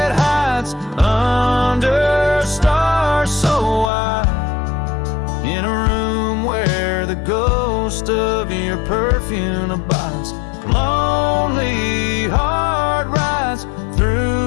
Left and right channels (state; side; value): drops out; right; at 3.9 s